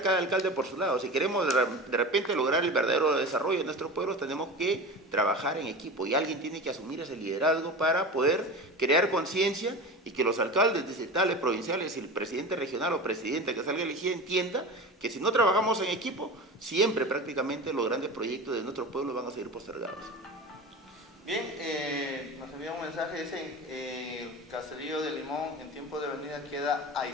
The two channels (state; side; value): normal; both; correlation 0.30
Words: cada alcalde por su lado. Si queremos de repente lograr el verdadero desarrollo de nuestros pueblos, tenemos que trabajar en equipo. Y alguien tiene que asumir ese liderazgo para poder crear conciencia y que los alcaldes distritales, provinciales y el presidente regional o presidenta que salga elegido entienda que si no trabajamos en equipo, siempre prácticamente los grandes proyectos de nuestro pueblo van a seguir postergados. Bien, nos envía un mensaje, dicen, el caserío de Limón en tiempo de venida queda